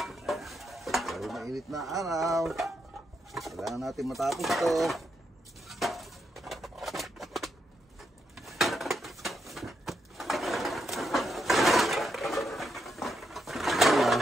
Dahil mainit na araw, kailangan natin matapos ito.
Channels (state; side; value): normal; both; correlation 0.81